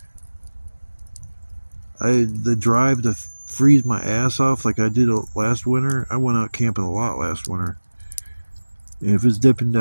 The drive to freeze my ass off like I did last winter. I went out camping a lot last winter. And if it's dipping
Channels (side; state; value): both; inverted; correlation -1.00